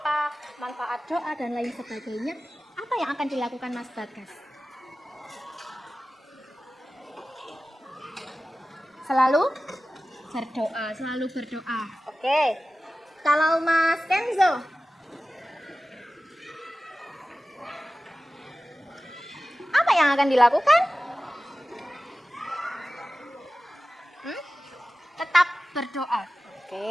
manfaat doa dan lain sebagainya. Apa yang akan dilakukan Mas Bagas? Selalu berdoa. Oke. Kalau Mas Kenzo, apa yang akan dilakukan? Tetap berdoa.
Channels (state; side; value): normal; both; correlation 0.95